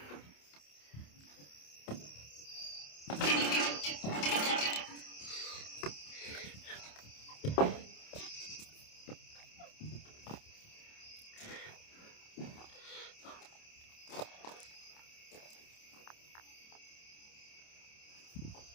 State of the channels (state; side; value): late; right; 28 ms